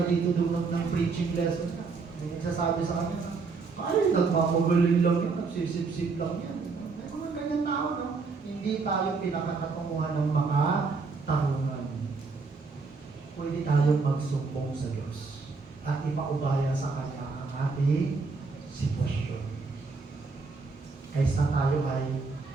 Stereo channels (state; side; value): quieter; left; 4.4 dB